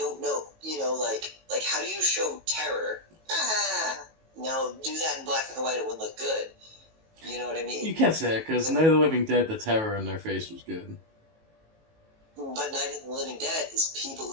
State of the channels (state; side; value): late; left; 19 ms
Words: know, you know, like how do you show terror? Now do that in black and white, it wouldn't look good. You know what I mean? You can't say it, because Night of the Living Dead, the terror in their face was good. But Night of the Living Dead is people